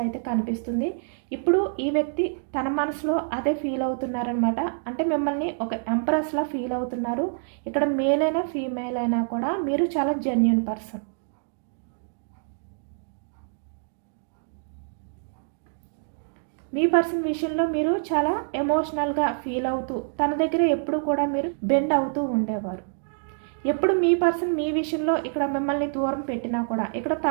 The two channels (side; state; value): left; silent; digital silence